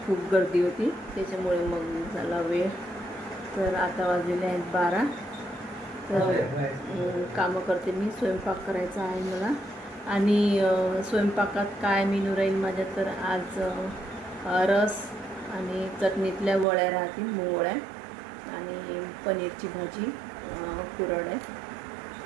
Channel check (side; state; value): left; drops out; at 16.7 s